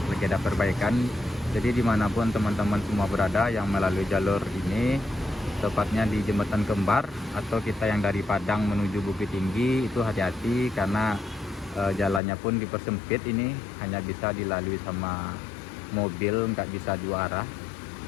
lagi ada perbaikan. Jadi dimanapun teman-teman semua berada yang melalui jalur ini, tepatnya di Jembatan Kembar atau kita yang dari Padang menuju Bukit Tinggi, itu hati-hati karena jalannya pun dipersempit, ini hanya bisa dilalui sama mobil, nggak bisa dua arah.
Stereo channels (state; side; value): drops out; right; at 12.2 s